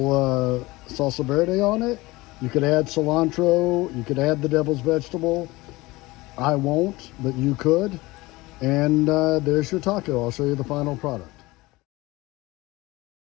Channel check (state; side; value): quieter; right; 20.8 dB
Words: salsa verde on it. You could add cilantro, you could add the devil's vegetable. I won't, but you could. And there's your taco. I'll show you the final product.